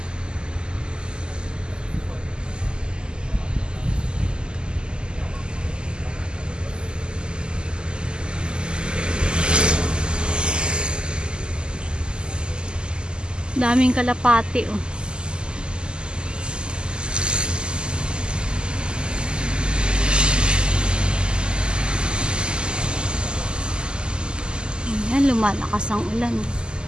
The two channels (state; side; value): late; left; 0.048 ms